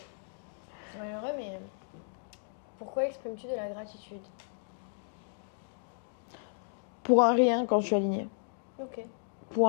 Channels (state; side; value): silent; right; digital silence